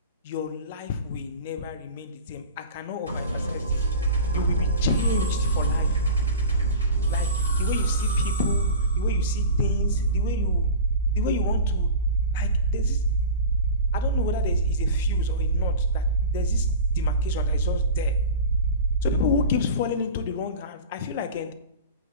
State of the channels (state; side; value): inverted; both; correlation -0.33